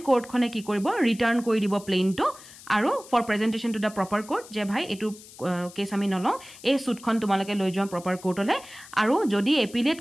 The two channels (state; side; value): noise; left; hiss, 19 dB below the sound